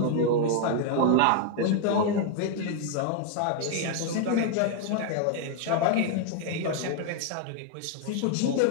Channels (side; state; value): both; different; correlation 0.00